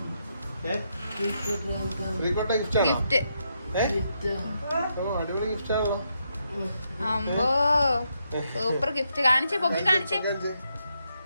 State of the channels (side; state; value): both; inverted; correlation -0.80